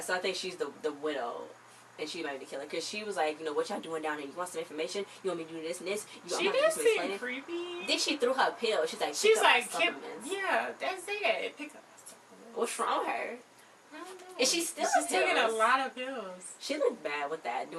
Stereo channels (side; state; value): both; identical; correlation 1.00